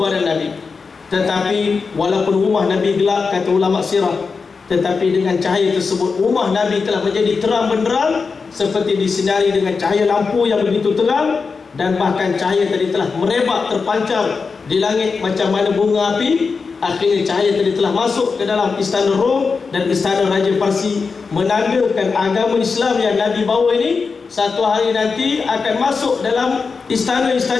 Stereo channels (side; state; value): right; quieter; 4.9 dB